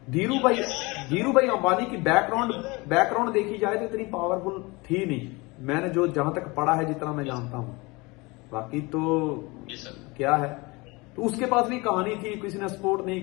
धीरूभाई अंबानी की बैकग्राउंड देखी जाए तो इतनी पावरफुल थी नहीं, मैंने जो जहां तक पढ़ा है, जितना मैं जानता हूं, बाकी तो क्या है तो उसके पास भी कहानी थी, किसी ने सपोर्ट नहीं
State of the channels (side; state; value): right; quieter; 24.9 dB